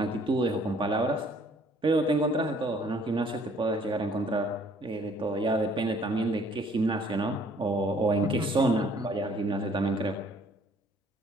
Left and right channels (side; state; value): both; normal; correlation 0.60